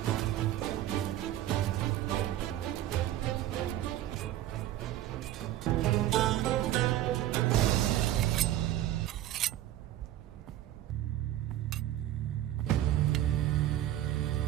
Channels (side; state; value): left; quieter; 13.3 dB